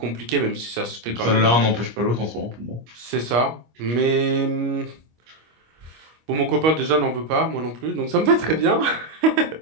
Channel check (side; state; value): left; late; 25 ms